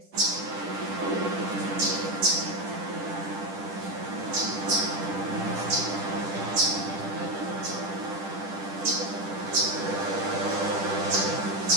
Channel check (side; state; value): left; late; 10 ms